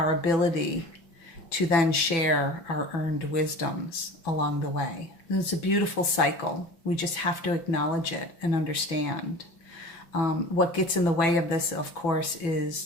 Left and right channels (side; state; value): right; late; 6.0 ms